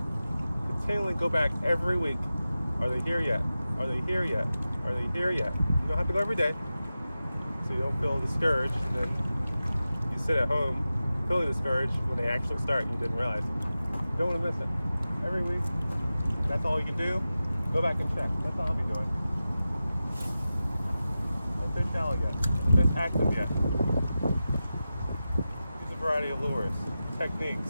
continually go back every week. Are they here yet? Are they here yet? Are they here yet? You don't have to go every day, so you don't feel discouraged, and then you sit at home feeling discouraged when they actually start and you didn't realize. You don't want to miss it. Every week, that's all you can do. Go back and check. That's all I'll be doing. Are the fish shallow yet? Are the fish active yet? Use a variety of lures,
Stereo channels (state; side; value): inverted; both; correlation -0.94